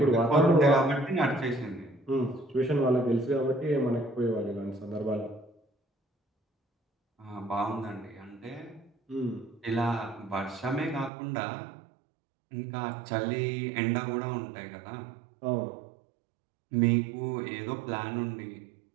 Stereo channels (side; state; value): left; drops out; at 11.1 s